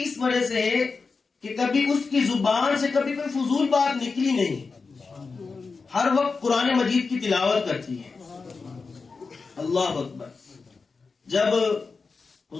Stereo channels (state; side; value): quieter; right; 4.5 dB